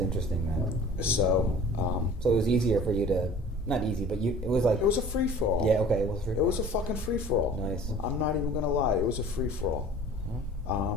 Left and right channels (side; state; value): both; normal; correlation 0.45